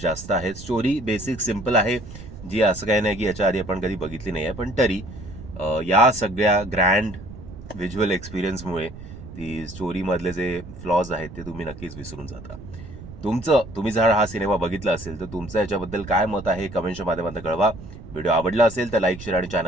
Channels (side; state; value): right; noise; rumble, 14 dB below the sound